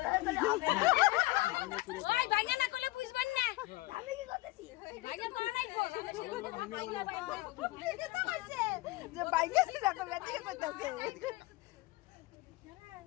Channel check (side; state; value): right; quieter; 19.7 dB